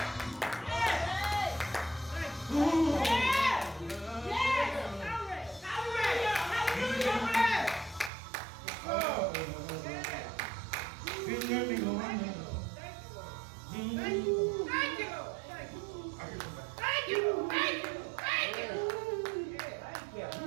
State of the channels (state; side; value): drops out; left; at 8.1 s